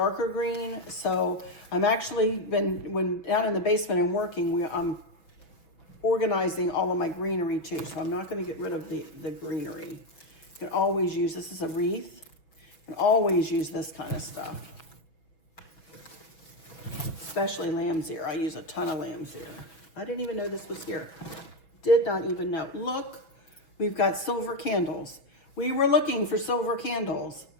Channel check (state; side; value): late; right; 6.2 ms